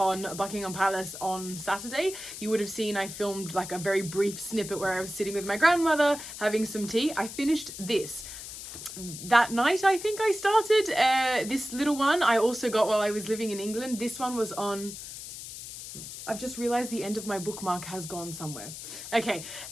Buckingham Palace on Saturday. You would have seen I filmed like a very brief snippet where I was sitting with my grandmother having some tea. I finished this. That night, I think I started this little one. I also got while I was living in England. This one was on... I've just realized the end of my bookmark has gone somewhere. Okay,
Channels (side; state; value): left; noise; hiss, 11 dB below the sound